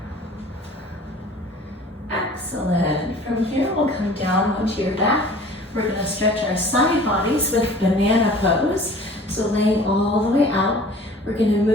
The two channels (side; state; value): both; normal; correlation 0.47